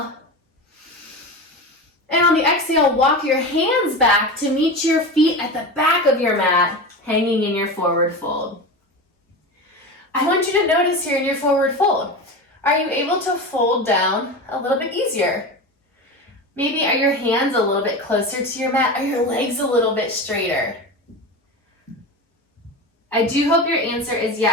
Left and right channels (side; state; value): both; normal; correlation 0.25